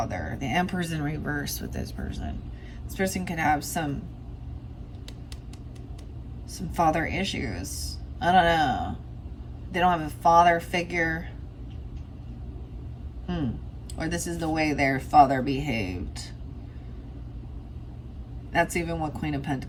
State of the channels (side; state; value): both; identical; correlation 1.00